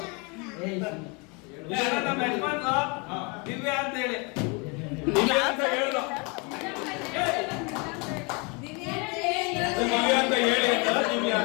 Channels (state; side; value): quieter; right; 30.0 dB